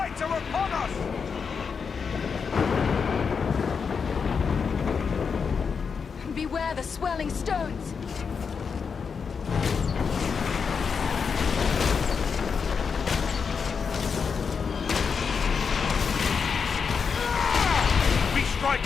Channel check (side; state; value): right; quieter; 5.9 dB